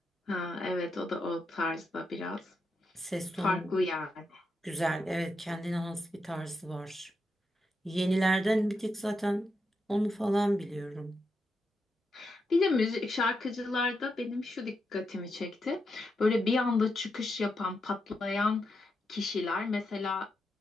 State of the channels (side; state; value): both; normal; correlation 0.85